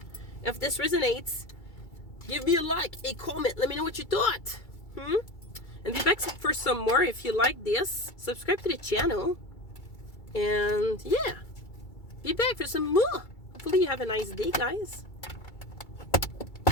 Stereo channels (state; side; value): late; right; 2.3 ms